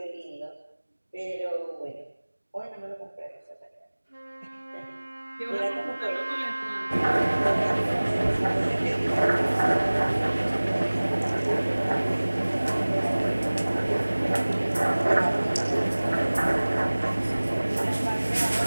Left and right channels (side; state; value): both; inverted; correlation -1.00